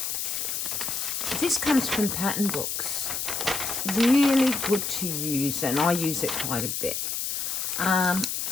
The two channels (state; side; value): noise; left; hiss, 2 dB below the sound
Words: This comes from pattern books. Really good to use, and I use it quite a bit.